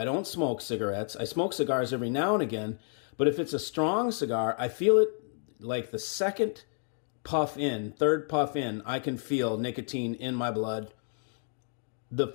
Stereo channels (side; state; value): right; silent; 58 dB below the other